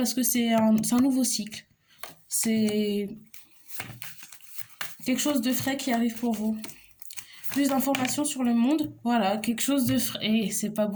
que c'est un nouveau cycle. C'est quelque chose de frais qui arrive pour vous. Plus d'informations sur le monde, voilà, quelque chose de frais. Et c'est pas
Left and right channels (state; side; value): identical; both; correlation 1.00